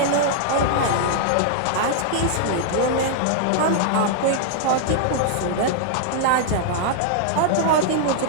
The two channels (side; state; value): both; different; correlation -0.01